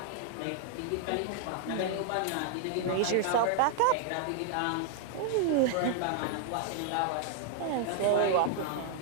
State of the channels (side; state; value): both; different; correlation 0.00